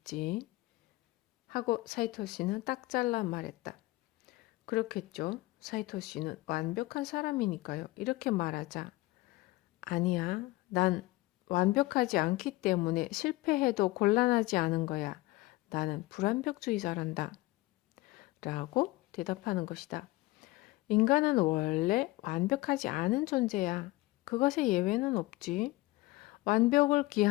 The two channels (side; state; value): right; quieter; 19.9 dB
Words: 하고 사이토 씨는 딱 잘라 말했다. 그렇겠죠. 사이토 씨는 완벽한 사람이니까요. 이렇게 말하자. 아니야. 난 완벽하지 않기 때문에 실패해도 곤란하지 않은 거야. 나는 불완벽주의자란다. 라고 대답하는 것이다. 인간은 원래 완벽하지 않은 존재야. 그것에 예외는 없지. 완벽을